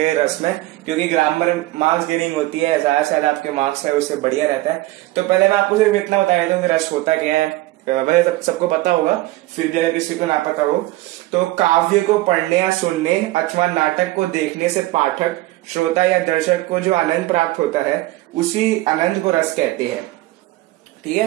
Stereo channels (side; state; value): left; quieter; 18.0 dB